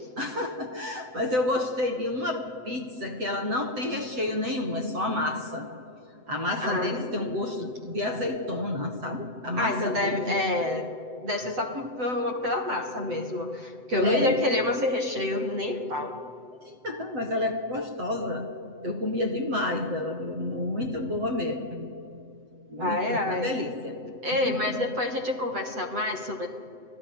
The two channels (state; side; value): late; left; 7.9 ms